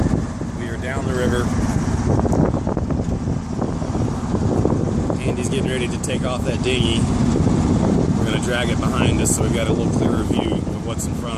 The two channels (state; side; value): identical; both; correlation 1.00